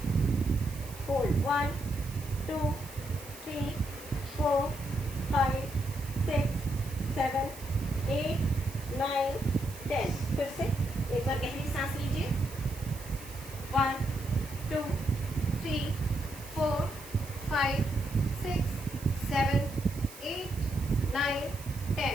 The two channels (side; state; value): right; noise; hiss, 16 dB below the sound